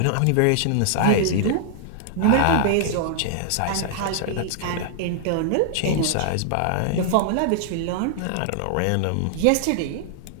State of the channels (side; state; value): both; different; correlation -0.01